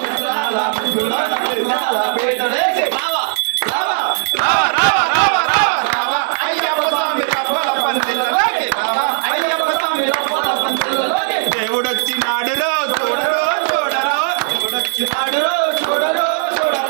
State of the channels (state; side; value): silent; left; 68 dB below the other